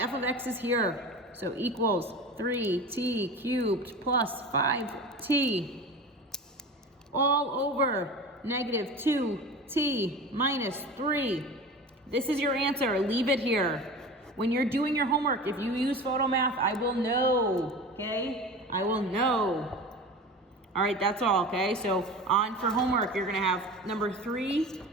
of x is here, so equals 3t cubed plus 5t all over -2t minus 3. This is your answer. Leave it here. When you're doing your homework, if you use PhotoMath, I will know, okay? I will know. All right, that's all, okay? So on for homework, you're gonna have number 3,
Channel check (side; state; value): both; normal; correlation 0.33